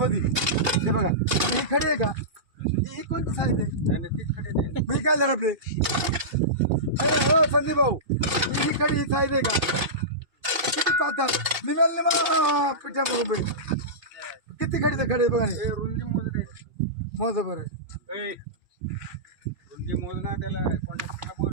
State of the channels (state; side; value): late; left; 2.6 ms